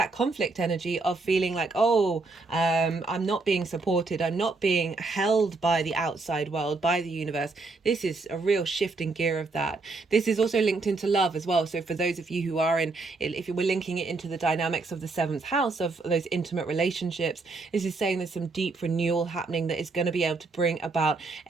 conflict energy of feeling like, I'm not being supported, I'm not being held by the outside world, by the universe. This is a real shift in gear of that. This is also linked into love as well. So for those of you who are in, if we're linking it into the dynamics of the 7th house of those intimate relationships, this is saying there's some deep renewal happening that is going to be able to bring about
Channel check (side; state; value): left; quieter; 3.6 dB